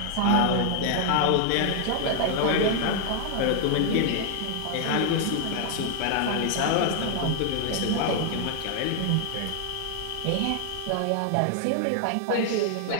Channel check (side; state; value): both; different; correlation 0.00